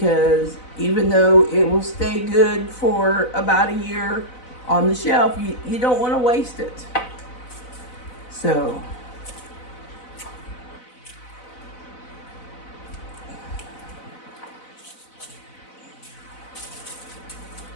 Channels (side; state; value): right; late; 4.0 ms